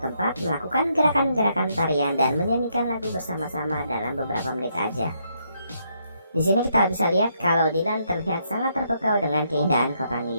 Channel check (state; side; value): inverted; both; correlation -0.75